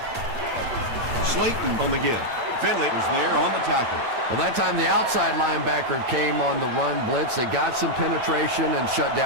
Slayton on the give. Finley was there on the tackle. Well, that time the outside linebacker came on the run blitz. They got some penetration and shut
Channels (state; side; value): late; left; 8.5 ms